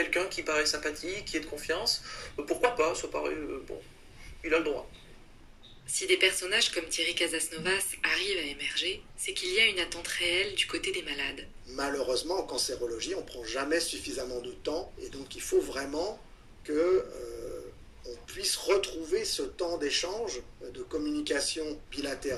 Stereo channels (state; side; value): identical; both; correlation 1.00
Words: qui paraît sympathique, qui est de confiance, pourquoi pas, ça paraît, il a le droit. Si des personnages comme Thierry Casasnovas arrivent à émerger, c'est qu'il y a une attente réelle du côté des malades. Malheureusement, en cancérologie, on ne prend jamais suffisamment de temps, et donc il faut vraiment que on puisse retrouver ce temps d'échange, de communication